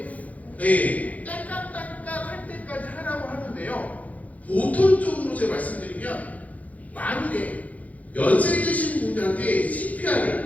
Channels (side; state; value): right; late; 0.072 ms